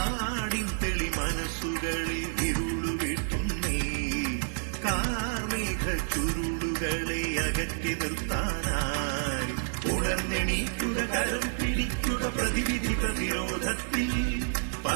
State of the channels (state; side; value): silent; left; digital silence